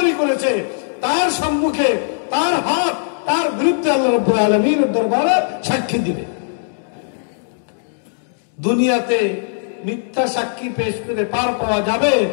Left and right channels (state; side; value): silent; right; digital silence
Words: করেছে, তার সম্মুখে তার হাত তার বিরুদ্ধে আল্লাহ রাব্বুল আলামিনের দরবারে সাক্ষী দিবে। দুনিয়াতে মিথ্যা সাক্ষী পেশ করে পার পাওয়া যাবে,